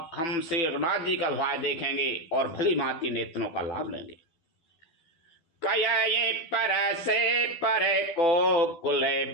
हम श्री रघुनाथ जी का भाव देखेंगे और भली भांति नेत्रों का लाभ लेंगे। कये पर से पर को कुल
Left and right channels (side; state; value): right; late; 12 ms